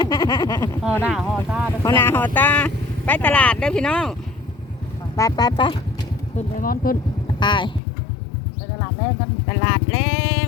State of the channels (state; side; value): drops out; right; at 7.8 s